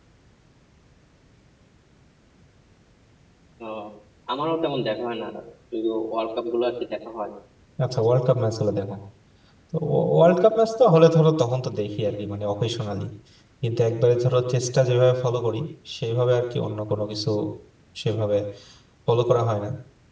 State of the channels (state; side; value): identical; both; correlation 1.00